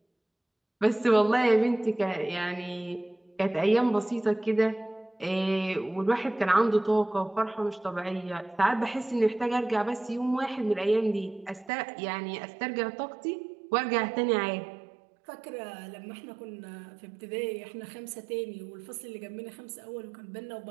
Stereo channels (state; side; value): drops out; left; at 11.7 s